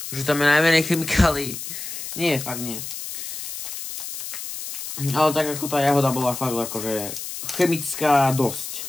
že tam je najmenej chemikálií. Nie, fakt nie. Ale tak ako tá jahoda bola fakt akože chemická dosť.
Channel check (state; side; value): noise; left; hiss, 8 dB below the sound